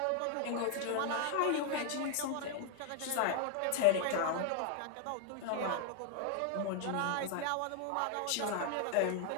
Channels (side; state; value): both; different; correlation 0.00